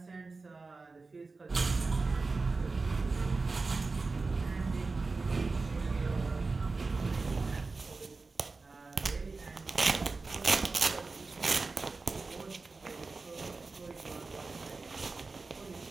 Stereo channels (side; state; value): left; quieter; 3.9 dB